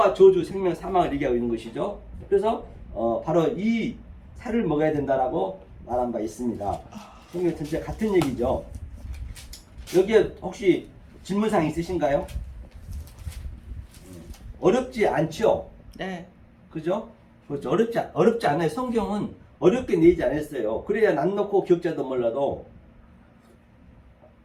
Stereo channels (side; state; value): both; identical; correlation 1.00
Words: 저주, 생명, 사망을 얘기하고 있는 것이죠. 그래서 바로 이 살을 먹어야 된다라고 말한 바 있습니다. 성경 전체 같은 얘기죠. 여기에 혹시 질문사항 있으신가요? 어렵지 않죠? 네. 그죠? 그렇죠. 어렵지 않아요. 성경은 어렵게 내지 않았어요. 그래야 난 놓고 기억자도 몰라도